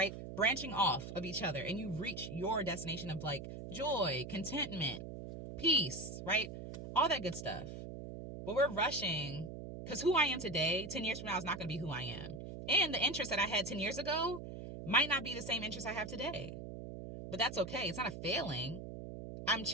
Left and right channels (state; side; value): noise; right; hum, 9 dB below the sound